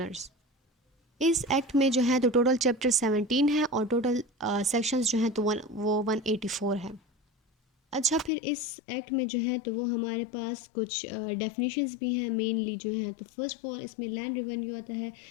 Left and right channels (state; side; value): drops out; right; at 8.3 s